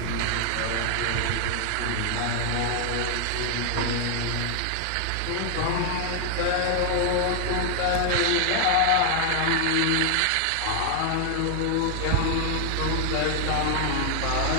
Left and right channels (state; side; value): different; both; correlation 0.00